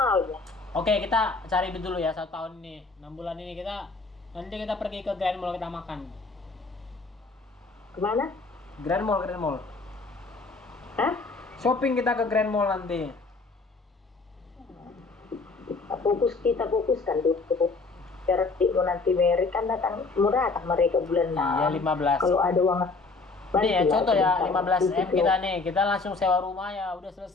Oke, kita cari duit dulu ya 1 tahun ini. 6 bulan ini nanti kita pergi ke Grand Mall, kita makan. Kemana? Grand Mall. Hah? Shopping kita ke Grand Mall nanti. Kita fokuskan dulu. Biar mau nanti Mary kan murah mereka bulan Iya, 15. Kalau ada uang. Nih ya, contoh ya 15 M kita nih, kita langsung sewa rumah ya, udah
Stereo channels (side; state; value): right; quieter; 3.9 dB